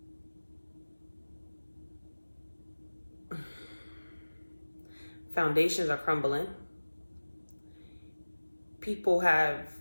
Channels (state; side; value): inverted; both; correlation -1.00